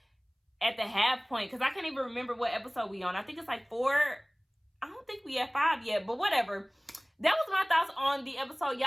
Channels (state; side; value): identical; both; correlation 1.00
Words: at the half point, because I can't even remember what episode we on. I think it's like 4. I don't think we at 5 yet, but whatever. That was my thoughts on the episode.